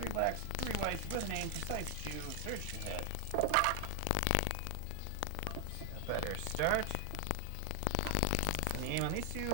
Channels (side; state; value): both; different; correlation 0.00